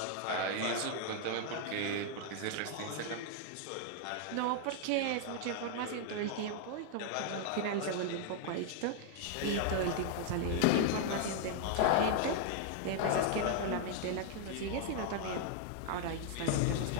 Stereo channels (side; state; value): both; different; correlation 0.00